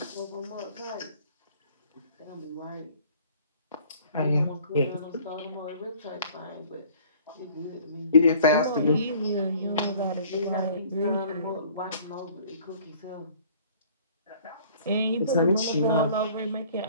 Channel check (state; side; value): inverted; both; correlation -0.52